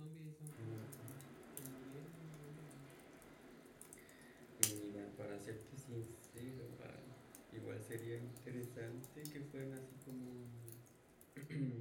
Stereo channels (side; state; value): both; identical; correlation 1.00